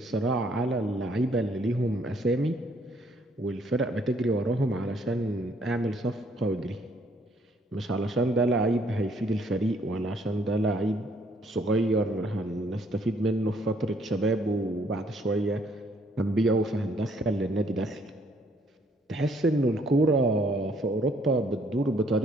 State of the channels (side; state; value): both; normal; correlation 0.66